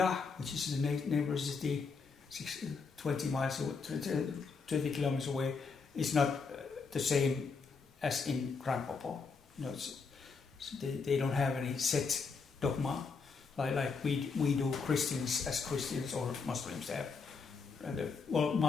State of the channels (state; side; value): quieter; right; 4.9 dB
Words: which is the neighbor city, 20 miles away, 20 kilometers away, is not the same as in Grand Popo. They don't have any set dogma like we do Christians as Christians, or Muslims have. Well,